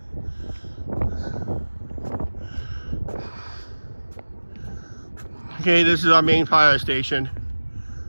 Okay, this is our main fire station.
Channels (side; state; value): both; inverted; correlation -1.00